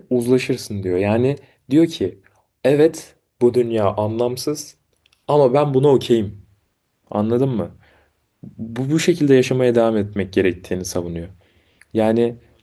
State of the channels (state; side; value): identical; both; correlation 1.00